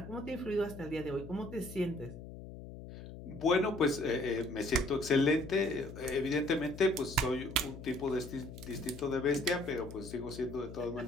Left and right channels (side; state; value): left; noise; hum, 12 dB below the sound